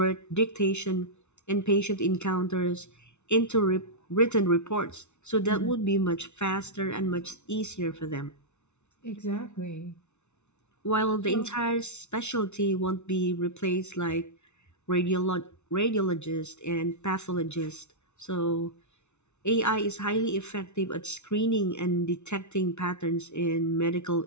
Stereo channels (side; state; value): right; late; 0.82 ms